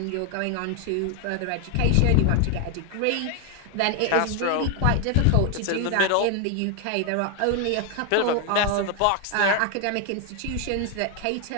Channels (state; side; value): different; both; correlation 0.01